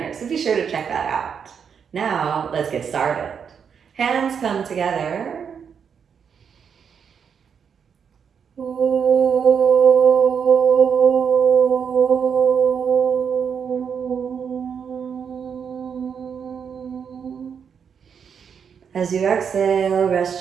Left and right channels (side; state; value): left; quieter; 7.0 dB